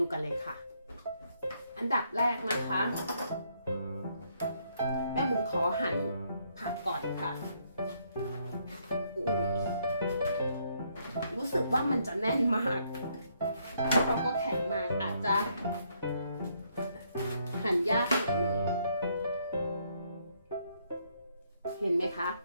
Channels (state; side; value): inverted; both; correlation -0.72